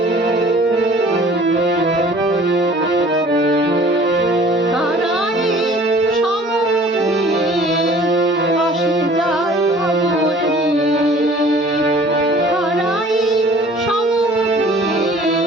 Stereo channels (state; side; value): normal; both; correlation 0.50